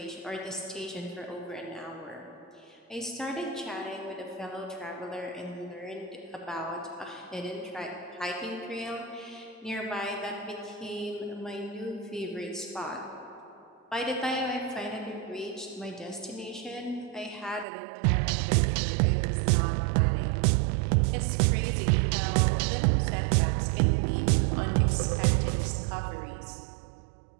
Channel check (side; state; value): left; drops out; at 17.7 s